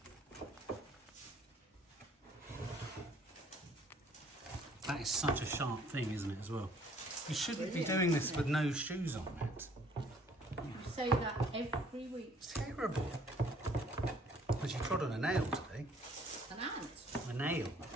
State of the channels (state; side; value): normal; both; correlation 0.59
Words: That is such a sharp thing, isn't it, as well? You shouldn't be doing this with no shoes on, Matt. You say that every week. It's terrible. Because you trod on a nail today. An ant. A nail.